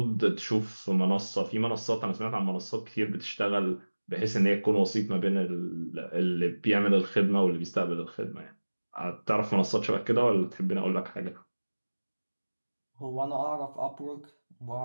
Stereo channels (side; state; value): both; inverted; correlation -1.00